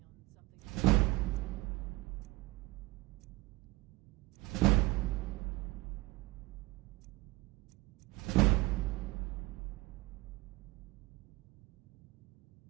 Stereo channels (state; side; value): quieter; left; 21.3 dB